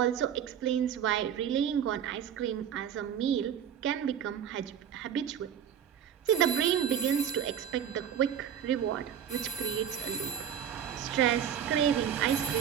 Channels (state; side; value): quieter; left; 9.1 dB